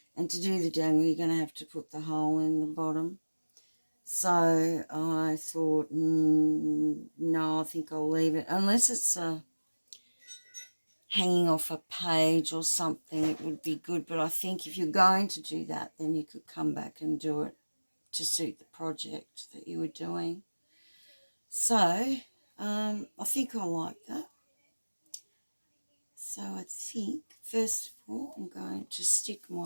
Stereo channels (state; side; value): inverted; both; correlation -1.00